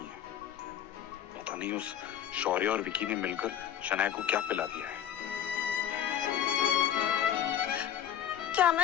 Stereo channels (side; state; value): right; quieter; 10.0 dB